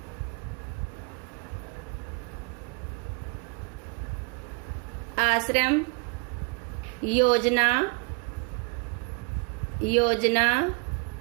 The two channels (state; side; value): quieter; left; 32.1 dB